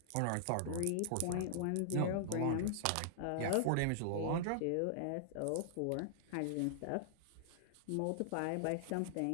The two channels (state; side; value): different; both; correlation -0.01